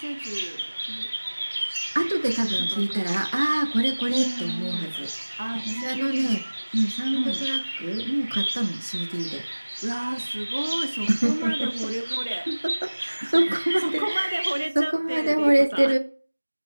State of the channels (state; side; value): inverted; both; correlation -1.00